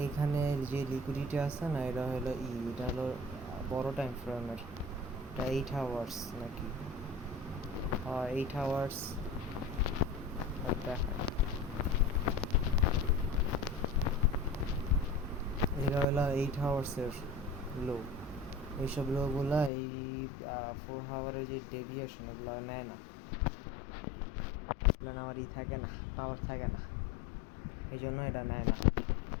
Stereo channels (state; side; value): drops out; right; at 19.7 s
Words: এইখানে যে লিকুইডিটি আছে না, এটা হলো এটা হলো বড় টাইম ফ্রেমের, এটা 8 আওয়ার্স নাকি, 8 আওয়ার্স দেখায়। এটা হলো 8 আওয়ার্সের লো। এইসব লোগুলা এই 4 আওয়ারের যে ডেভিয়েশন এগুলো নেয় না, এগুলো আমার থাকে না, পাওয়ার থাকে না, এই জন্য এটা নেয় না।